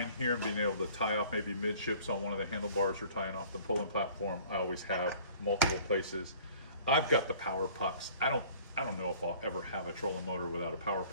here and being able to tie off maybe midships on one of the handlebars or tying off the pulling platform, I always have multiple places. I've got the power pucks. I don't know if I'll ever have a trolling motor without a power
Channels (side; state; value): both; inverted; correlation -0.50